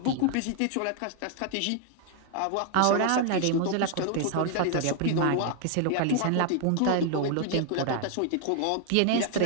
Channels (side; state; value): both; different; correlation 0.00